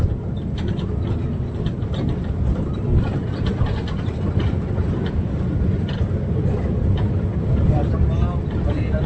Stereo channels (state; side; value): identical; both; correlation 1.00